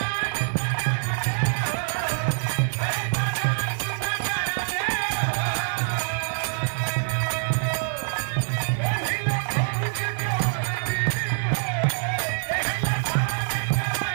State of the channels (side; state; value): left; silent; digital silence